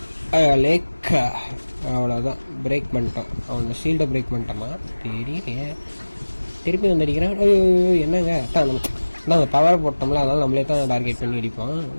லேக்கா அவ்வளோதான், பிரேக் பண்ணிட்டோம். அவனோட ஷீல்டை பிரேக் பண்ணிட்டோமா தெரியலையே. திருப்பி வந்து அடிக்கிறான். என்னங்க நாங்கள் பவரை போட்டோம்ல, அதனால நம்மளே தான் டார்கெட் பண்ணி அடிப்போம்.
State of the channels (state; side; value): inverted; both; correlation -1.00